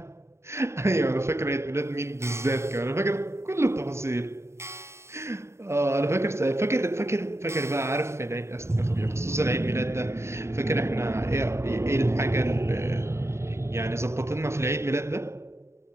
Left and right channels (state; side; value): late; left; 0.13 ms